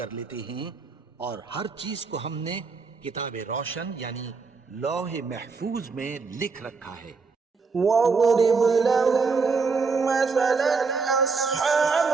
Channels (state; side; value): quieter; left; 4.7 dB